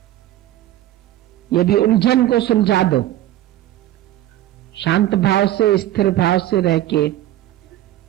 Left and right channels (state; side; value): quieter; left; 13.7 dB